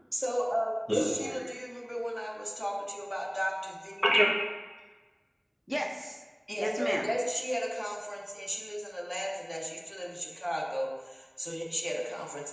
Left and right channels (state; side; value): identical; both; correlation 1.00